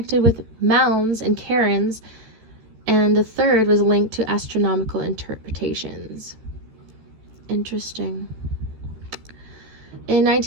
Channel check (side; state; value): left; late; 13 ms